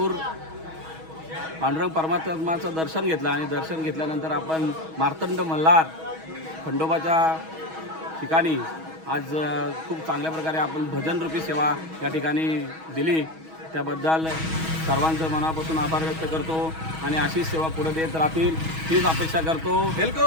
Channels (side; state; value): left; late; 6.2 ms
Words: पांडुरंग परमात्माचं दर्शन घेतलं आणि दर्शन घेतल्यानंतर आपण मार्तंड मल्हार खंडोबाच्या ठिकाणी आज खूप चांगल्या प्रकारे आपण भजनरूपी सेवा या ठिकाणी दिली. त्याबद्दल सर्वांचं मनापासून आभार व्यक्त करतो आणि अशीच सेवा पुढे देत राहतील हीच अपेक्षा करतो.